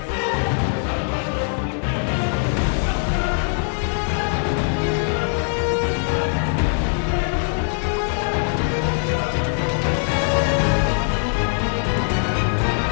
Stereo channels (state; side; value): silent; right; digital silence